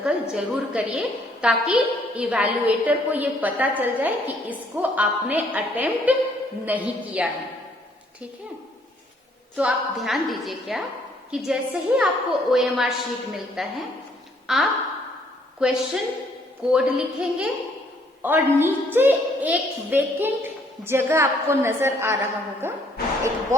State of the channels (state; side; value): normal; both; correlation 0.65